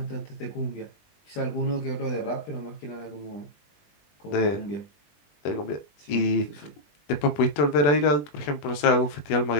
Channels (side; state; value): right; late; 20 ms